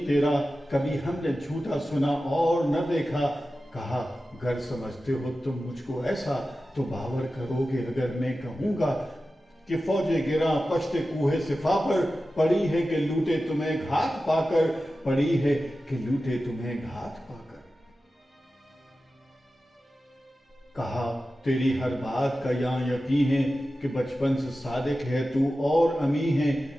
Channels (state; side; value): normal; both; correlation 0.94